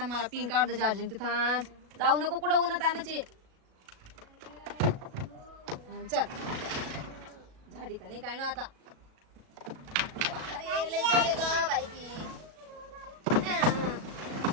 मला पिंक काढ दे चार्जिंग. ते थांब, जाऊ नको कुठं उन्हात आणायची. चल झाडी का नाही काय ना आता. अरे लय जड आहे गं बाई ती.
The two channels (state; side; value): late; left; 37 ms